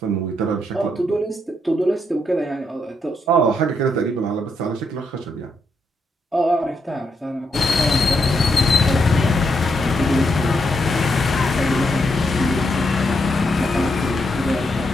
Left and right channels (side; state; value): both; normal; correlation 0.79